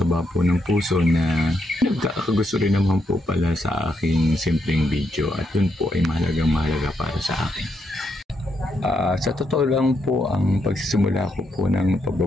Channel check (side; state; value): both; normal; correlation 0.79